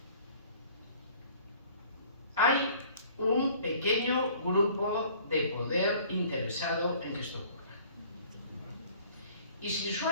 hay un pequeño grupo de poder interesado en que esto ocurra. Y sin su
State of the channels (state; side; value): inverted; both; correlation -0.52